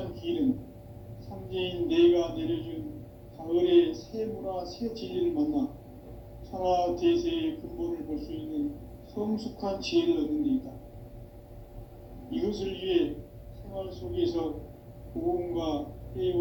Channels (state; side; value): identical; both; correlation 1.00